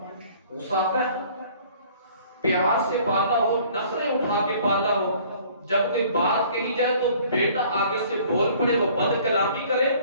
غصہ آتا ہے۔ پیار سے پالا ہو، نخرے اٹھا کے پالا ہو، جب کوئی بات کہی جائے تو بیٹا آگے سے بول پڑے، وہ بد کلامی کرے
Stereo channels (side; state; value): both; inverted; correlation -0.54